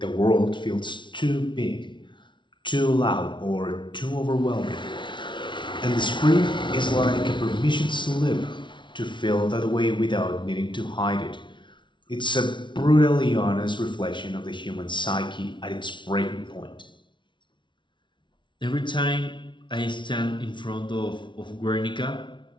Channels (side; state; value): right; late; 0.24 ms